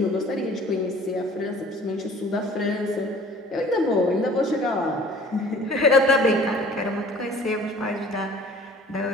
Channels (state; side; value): normal; both; correlation 0.49